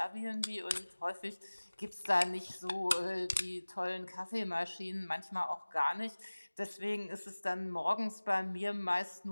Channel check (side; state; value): both; inverted; correlation -1.00